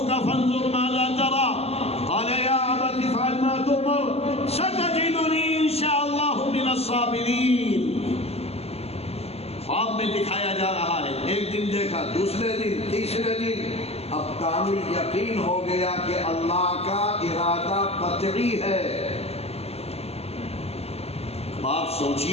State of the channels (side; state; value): right; late; 0.29 ms